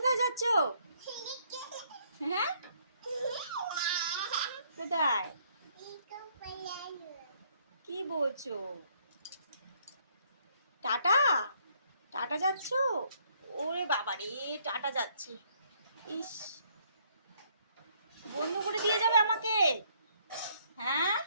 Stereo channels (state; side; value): inverted; both; correlation -0.67